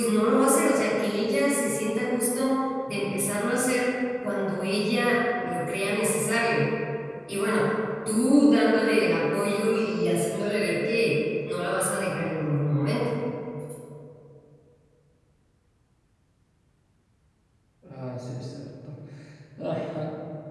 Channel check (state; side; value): identical; both; correlation 1.00